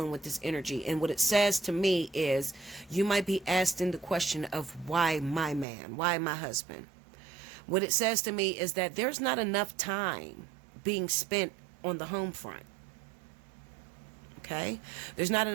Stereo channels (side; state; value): left; drops out; at 5.7 s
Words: with this energy. And what it says to me is you might be asking the question of why my man, why my husband. What it says to me is that there's not enough time being spent on the home front. Okay? There's not